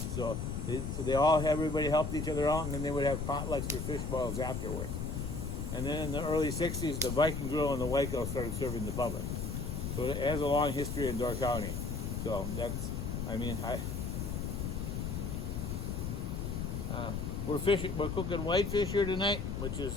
So everybody helped each other out, and then they would have potlucks for fish boils afterwards. And then in the early '60s, the Viking Grill and the Waco started serving the public. So it has a long history in Door County. So we're cooking whitefish here tonight, which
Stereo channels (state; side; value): noise; left; rumble, 3 dB below the sound